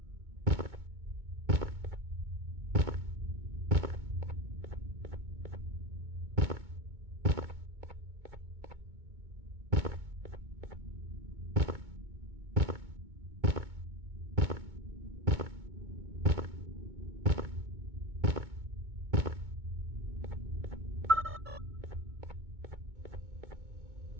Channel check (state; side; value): late; left; 2.2 ms